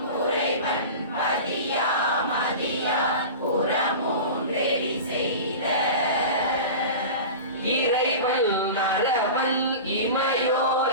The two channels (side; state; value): both; inverted; correlation -0.31